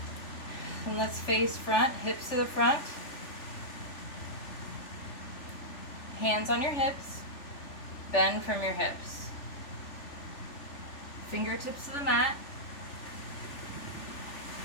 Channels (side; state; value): right; late; 3.4 ms